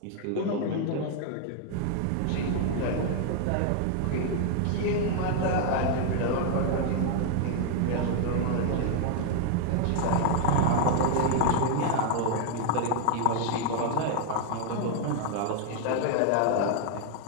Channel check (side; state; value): both; different; correlation 0.00